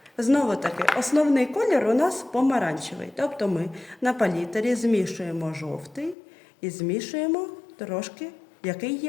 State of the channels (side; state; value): right; drops out; at 6.2 s